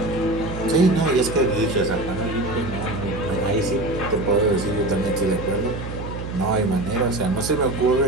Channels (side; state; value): right; noise; hum, 8 dB below the sound